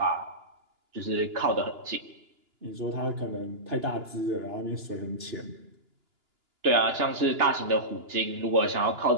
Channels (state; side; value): late; left; 2.9 ms